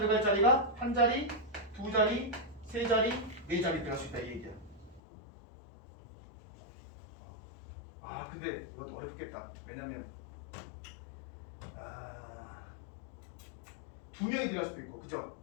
자리가 한 자리, 두 자리, 세 자리, 네 자리 들어갈 수 있다 이 얘기야. 근데 이것도 어렵겠다. 왜냐면 두 명이 들어갈 수도 있고, 그죠?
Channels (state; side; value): drops out; right; at 5.0 s